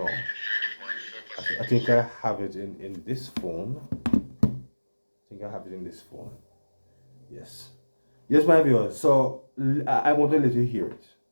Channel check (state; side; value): inverted; both; correlation -1.00